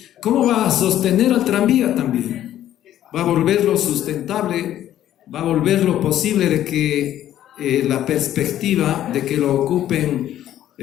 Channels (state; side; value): quieter; right; 12.1 dB